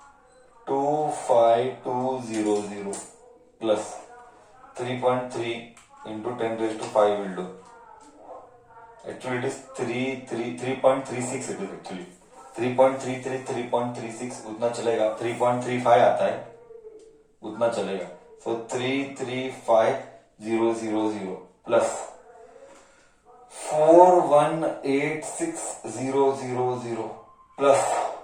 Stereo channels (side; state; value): both; identical; correlation 1.00